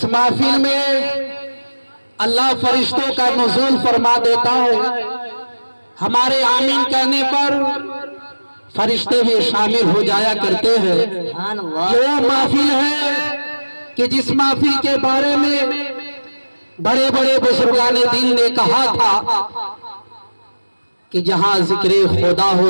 محفل میں اللہ فرشتوں کا نزول فرما دیتا ہے، ہمارے آمین کہنے پر فرشتے بھی شامل ہو جایا کرتے ہیں۔ یہ وہ محفل ہے کہ جس محفل کے بارے میں بڑے بڑے بزرگان دین نے کہا تھا کہ جہاں ذکر خدا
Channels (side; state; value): both; inverted; correlation -1.00